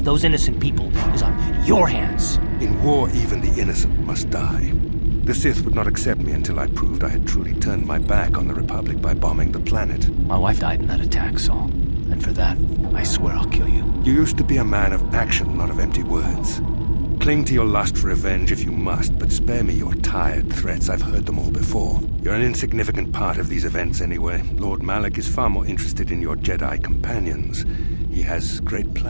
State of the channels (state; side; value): inverted; both; correlation -1.00